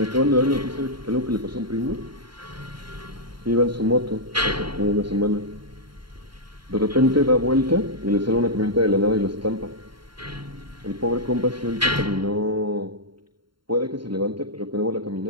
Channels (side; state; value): left; late; 0.73 ms